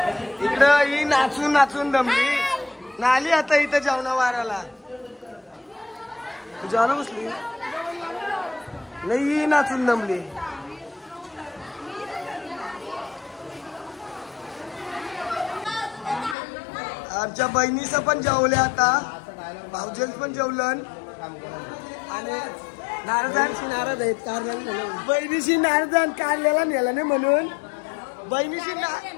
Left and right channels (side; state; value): right; drops out; at 16.4 s